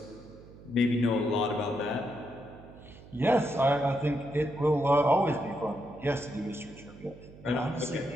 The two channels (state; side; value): noise; right; hum, 19 dB below the sound